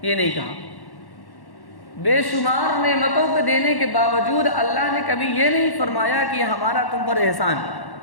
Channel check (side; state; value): right; late; 1.1 ms